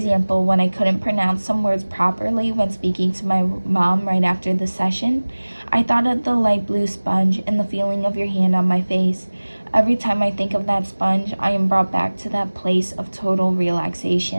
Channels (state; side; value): inverted; both; correlation -1.00